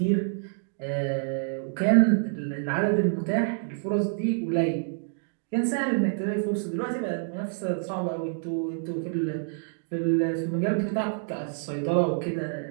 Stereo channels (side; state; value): left; silent; digital silence